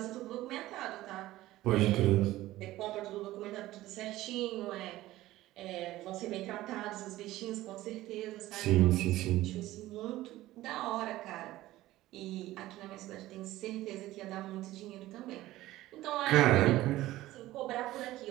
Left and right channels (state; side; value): quieter; left; 16.3 dB